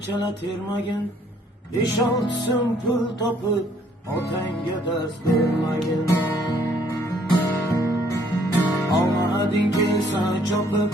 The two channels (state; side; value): normal; both; correlation 0.64